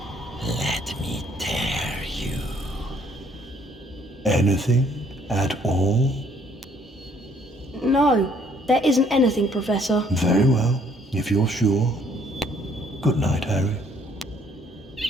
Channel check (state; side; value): normal; both; correlation 0.63